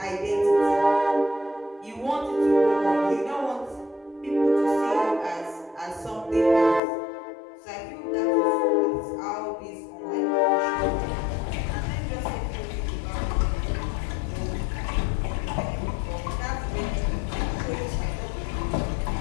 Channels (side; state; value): right; drops out; at 6.8 s